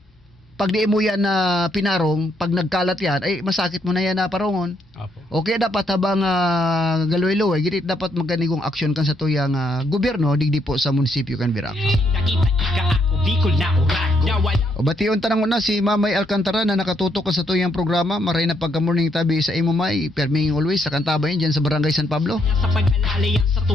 pag di mo yan na pinarong, pag nagkalat yan, ay masakit mo na yan na parongon. Opo. Okay, dapat habang galoy-loy, giti dapat magganigong aksyon kan sa tuyang gobyerno, digdi po sa munisipyo kan Virac. Nakita ika ako Bicol na urat. O batiyon tanang na si Mamay Alcantara na nakatutok sa tuyang programa, maray na pagka-morning tabi sa imo may, perming always, sa kantabay dyan sa Barangay San Pablo. Sa pag-alalay sa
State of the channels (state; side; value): normal; both; correlation 0.74